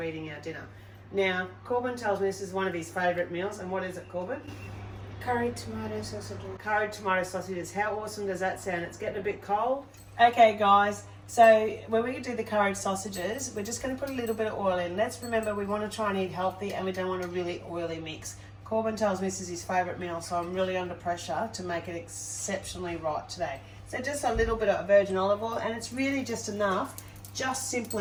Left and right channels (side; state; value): both; identical; correlation 1.00